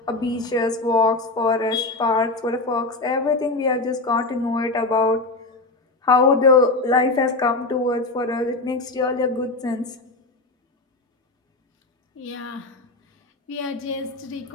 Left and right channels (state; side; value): quieter; right; 3.2 dB